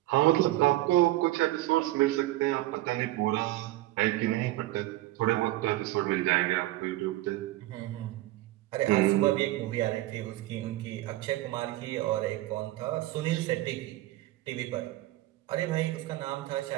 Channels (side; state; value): left; quieter; 16.6 dB